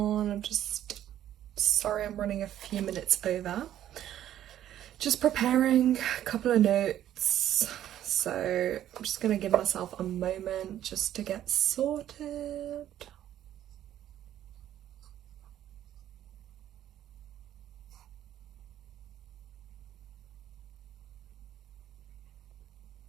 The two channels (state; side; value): quieter; left; 11.7 dB